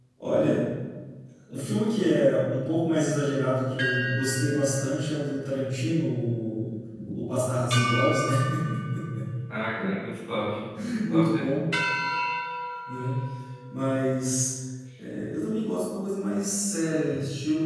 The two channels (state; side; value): identical; both; correlation 1.00